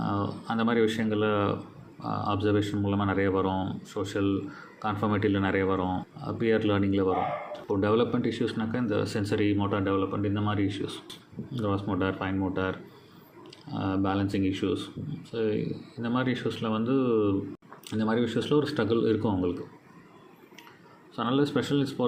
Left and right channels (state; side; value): identical; both; correlation 1.00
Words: அந்த மாதிரி விஷயங்களில் அப்சர்வேஷன் மூலமாக நிறைய வரும். சோஷியல் கான்ஃபர்மேட்டிவில் நிறைய வரும், பியர் லேர்னிங்கில் வரும். இப்போ டெவலப்மெண்ட் இஷ்யூஸ்னாக்கா இந்த சென்சரி மோட்டார் டெவலப்மெண்ட், இந்த மாதிரி issues, cross motor, fine motor, balancing issues. So இந்த மாதிரி இஷ்யூஸில் ஒரு ஸ்ட்ரகிள் இருக்கும் அவங்களுக்கு. ஸோ அதனால் ஸ்பெஷல் நீட்ஸ்